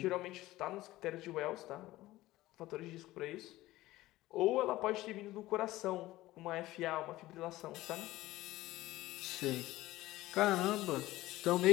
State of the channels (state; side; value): quieter; right; 17.1 dB